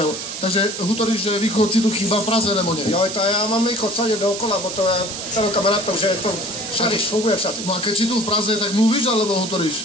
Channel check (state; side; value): noise; right; hiss, 7 dB below the sound